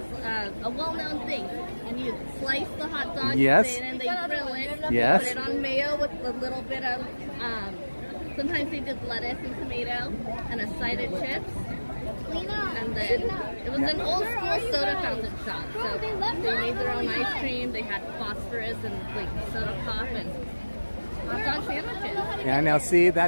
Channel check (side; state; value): both; inverted; correlation -1.00